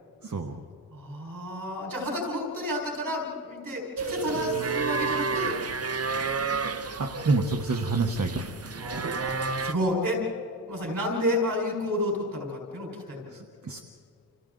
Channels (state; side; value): normal; both; correlation 0.18